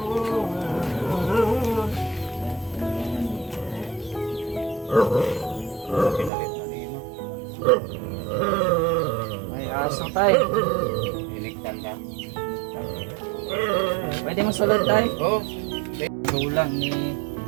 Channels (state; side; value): drops out; left; at 6.3 s